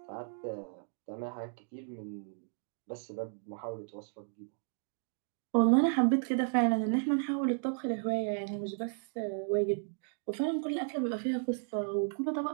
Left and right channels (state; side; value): silent; left; 55 dB below the other